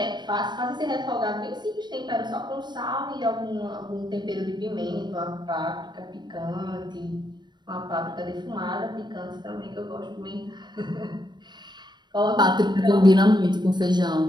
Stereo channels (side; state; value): left; late; 0.21 ms